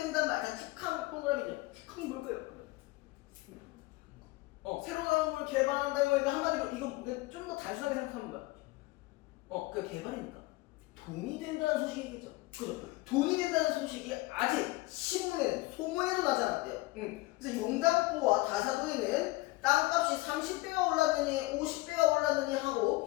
말이야. 축항 동그라미죠. 축항이 뭘까요? 새로 나온 걸 개발한다는 거니까 한마디로 이거 좀 더 단순하게 생각하면 뭐야? 그 개발이니까 돈이 된다는 소식이겠죠. 그죠? 돈이 된다는 소식이 아직 신문에는 소문에도 나지 않았대요. 그래서 용담포와 다사도에는 땅값이 30배가 올랐느니 50배가 올랐느니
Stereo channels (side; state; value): right; quieter; 21.0 dB